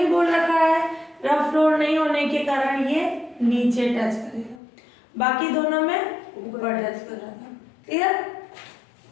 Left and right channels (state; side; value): drops out; right; at 4.6 s